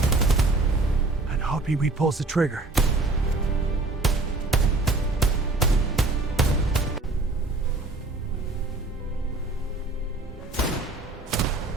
And Hoppy pulls the trigger.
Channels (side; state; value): left; quieter; 3.1 dB